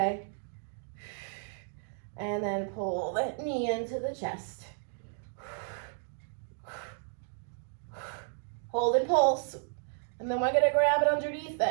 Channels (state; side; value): silent; left; digital silence